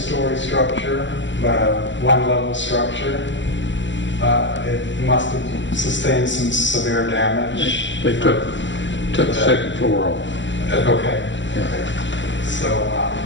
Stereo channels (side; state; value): right; late; 0.54 ms